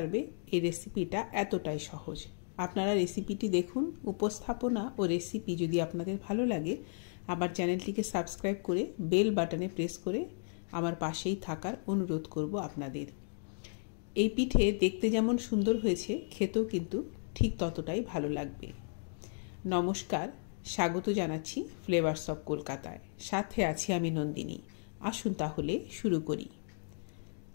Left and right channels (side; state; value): right; silent; digital silence